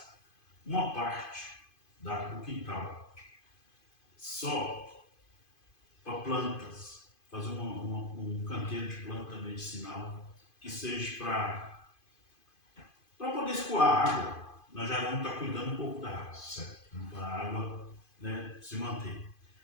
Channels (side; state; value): right; late; 2.5 ms